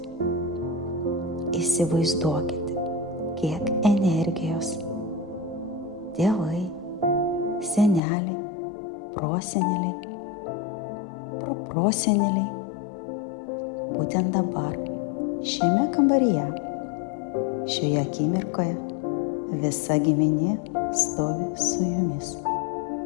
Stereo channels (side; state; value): right; drops out; at 8.0 s